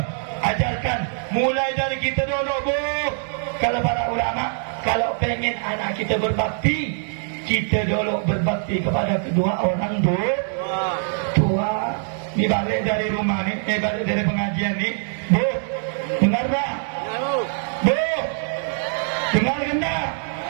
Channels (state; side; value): silent; left; 63 dB below the other